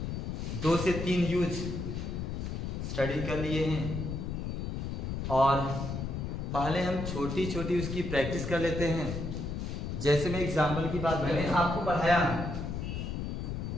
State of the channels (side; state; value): left; noise; rumble, 4 dB below the sound